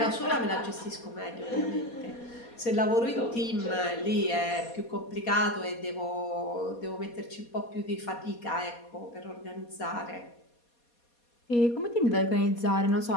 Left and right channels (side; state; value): right; late; 4.2 ms